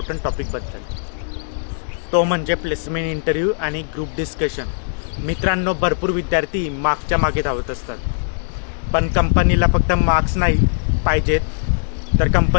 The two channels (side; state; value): right; silent; 64 dB below the other